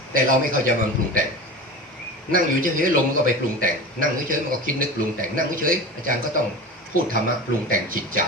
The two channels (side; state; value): both; normal; correlation 0.31